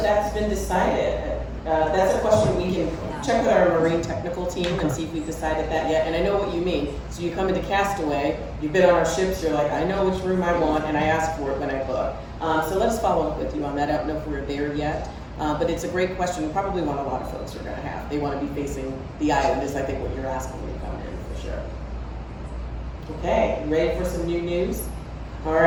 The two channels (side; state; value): both; identical; correlation 1.00